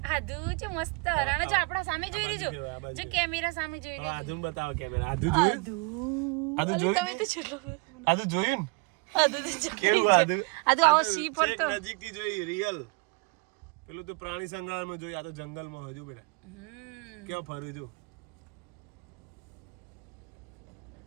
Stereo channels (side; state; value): left; quieter; 31.5 dB